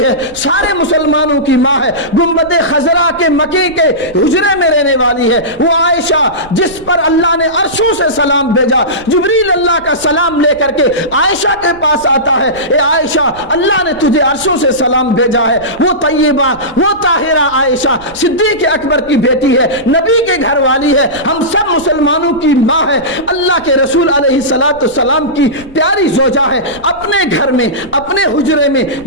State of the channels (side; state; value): right; noise; rumble, 21 dB below the sound